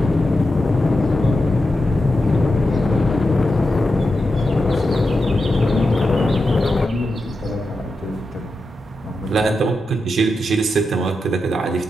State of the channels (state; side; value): normal; both; correlation 0.89